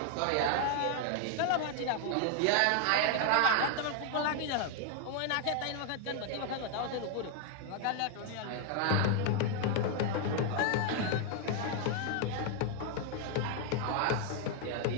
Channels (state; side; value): different; both; correlation 0.00